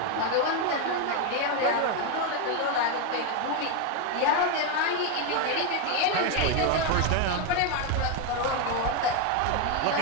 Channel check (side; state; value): both; different; correlation 0.02